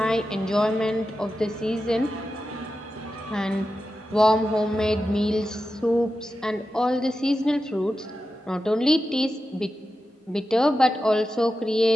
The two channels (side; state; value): both; normal; correlation 0.91